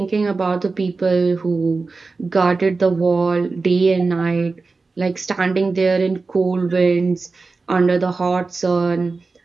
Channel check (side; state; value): left; quieter; 4.0 dB